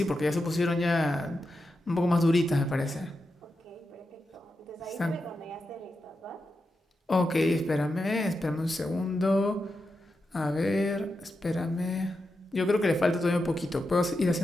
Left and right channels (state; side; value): normal; both; correlation 0.88